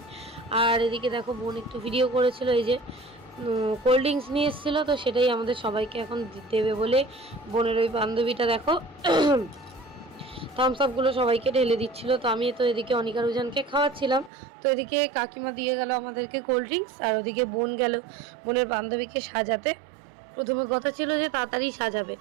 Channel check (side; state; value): left; drops out; at 14.3 s